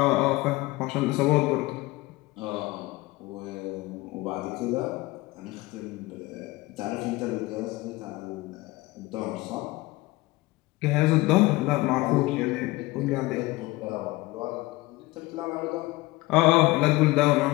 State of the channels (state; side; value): quieter; right; 20.5 dB